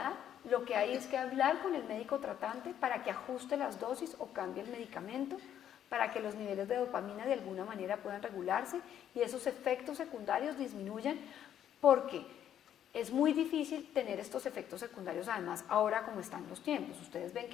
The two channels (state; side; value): quieter; right; 10.2 dB